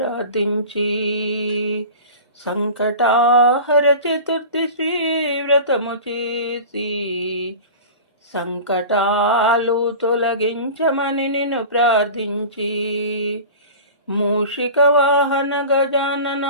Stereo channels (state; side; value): inverted; both; correlation -0.36